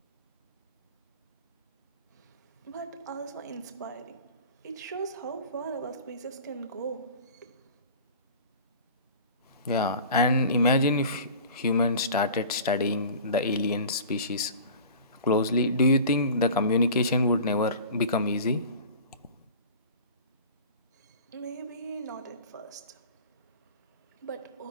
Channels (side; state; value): both; inverted; correlation -0.40